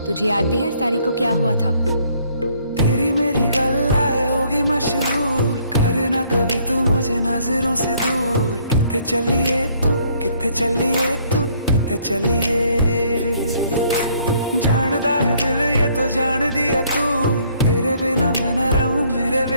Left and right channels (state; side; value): inverted; both; correlation -0.64